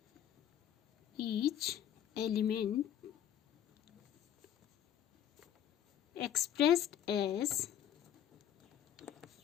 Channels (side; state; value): right; quieter; 10.2 dB